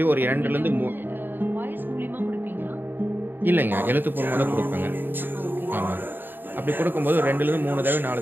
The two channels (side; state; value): left; late; 0.094 ms